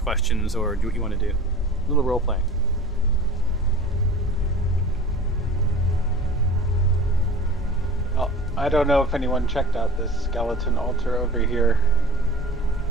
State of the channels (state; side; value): normal; both; correlation 0.41